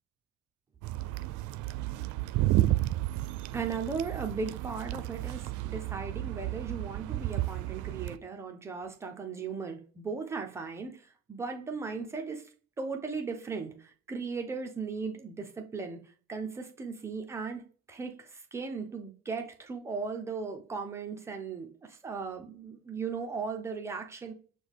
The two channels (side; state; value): left; quieter; 8.2 dB